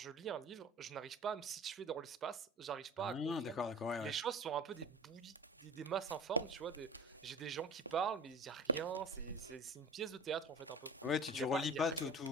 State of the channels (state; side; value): normal; both; correlation 0.37